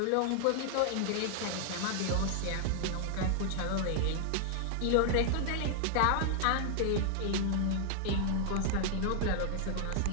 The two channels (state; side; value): different; both; correlation 0.00